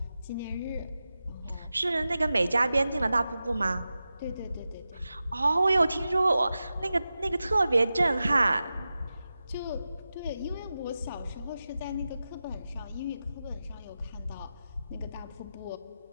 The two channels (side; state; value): both; inverted; correlation -0.92